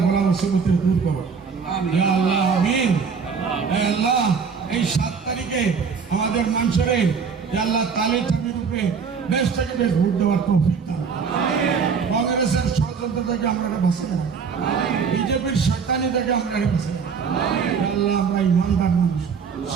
বলা মুসিবতের দূর করো। আল্লাহ আমিন। আল্লাহ এই 7 তারিখে আমাদের মানুষের আল্লাহ তালের চাবির উপরে বেশ থেকে বেশ ভোট দেওয়ার তৌফিক দাও। কংগ্রেসের ষড়যন্ত্র থেকে আমরা বাঁচাই, বিজেপির শয়তানি থেকে আমরা বাঁচাই। আল্লাহ আমরা ইমানদার মানুষ,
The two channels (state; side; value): quieter; left; 5.9 dB